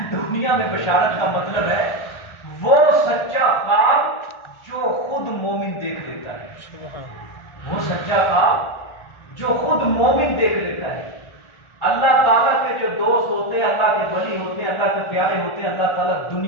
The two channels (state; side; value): late; right; 1.4 ms